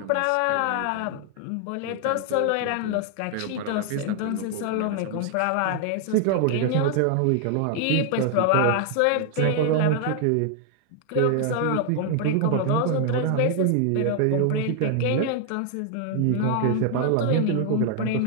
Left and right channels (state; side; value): different; both; correlation 0.00